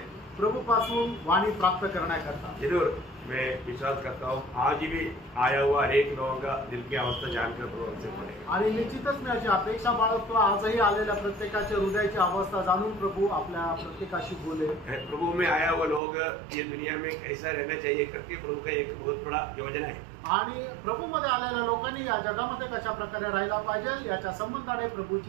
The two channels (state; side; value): drops out; left; at 16.0 s